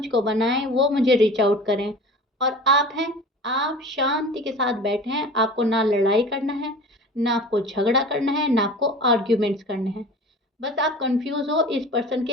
बनाएं, वो मुझे रीच आउट करें। और आप हैं, आप शांति के साथ बैठे हैं, आपको ना लड़ाई करना है, ना आपको झगड़ा करना है, ना आपको आर्ग्यूमेंट्स करने हैं। बस आप कंफ्यूज हो इस पर्सन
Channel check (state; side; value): normal; both; correlation 0.39